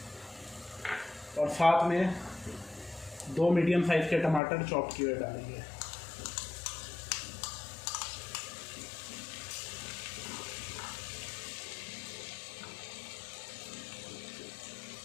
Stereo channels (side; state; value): right; drops out; at 4.4 s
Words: और साथ में 2 मीडियम साइज़ के टमाटर चॉप किए हुए डालेंगे।